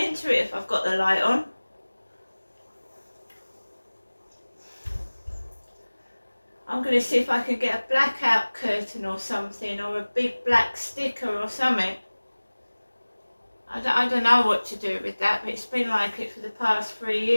into it if I've got the light on. I'm going to see if I can get a blackout curtain or something, or a big black sticker or something. I don't know what to do with that, but it's been like it for the past 3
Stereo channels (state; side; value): inverted; both; correlation -1.00